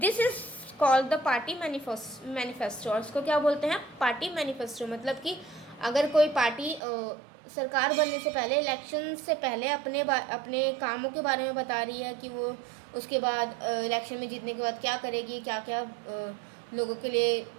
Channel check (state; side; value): drops out; left; at 6.8 s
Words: is called the party manifesto. और उसको क्या बोलते हैं, पार्टी मैनिफेस्टो। मतलब कि अगर कोई पार्टी सरकार बनने से पहले, इलेक्शन से पहले अपने कामों के बारे में बता रही है कि वो उसके बाद इलेक्शन में जीतने के बाद क्या करेगी, क्या क्या लोगों के लिए